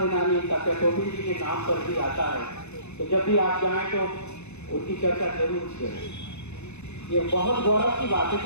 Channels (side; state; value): right; late; 0.81 ms